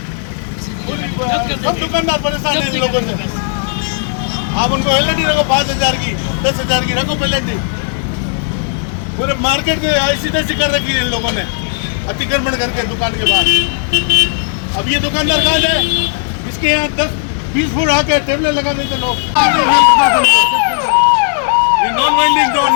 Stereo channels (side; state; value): right; silent; 64 dB below the other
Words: सब दुकानदार परेशान है इन लोगों से। आप उनको पेनल्टी रखो 5,000 की, 10,000 की रखो पेनल्टी। पूरे मार्केट में ऐसी तैसी कर रखी है इन लोगों ने, अतिक्रमण करके दुकान के बाद। अब ये दुकानदार कहाँ है? इसके यहाँ 10-20 फुट आके टेबलें लगा देते लोग। ये नॉन वेंडिंग जोन